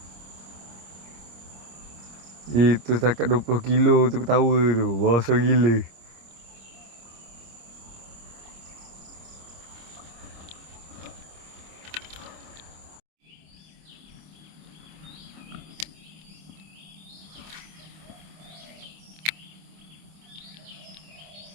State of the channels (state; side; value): late; left; 26 ms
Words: Itu setakat 20 kilo tu ketawa tu. Besar gila.